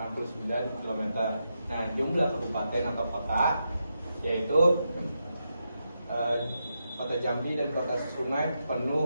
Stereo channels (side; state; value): both; inverted; correlation -0.85